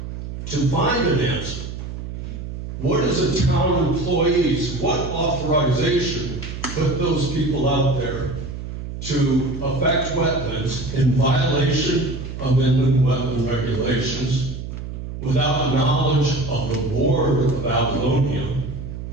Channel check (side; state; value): right; noise; hum, 8 dB below the sound